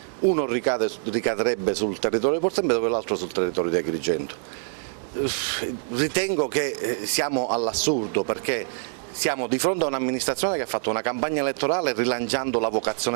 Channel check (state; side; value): silent; left; digital silence